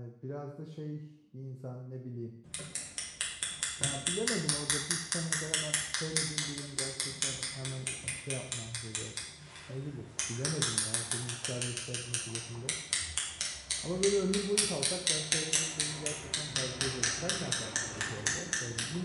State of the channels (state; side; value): identical; both; correlation 1.00